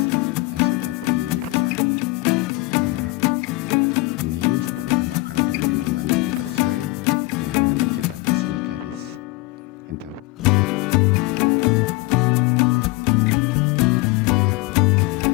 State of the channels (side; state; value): right; quieter; 21.8 dB